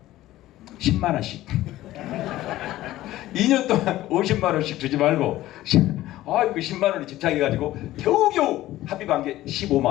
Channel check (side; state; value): right; quieter; 15.5 dB